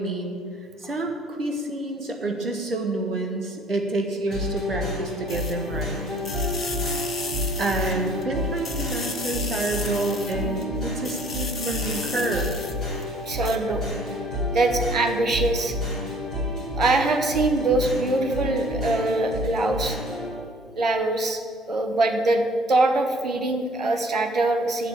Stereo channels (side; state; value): both; normal; correlation 0.55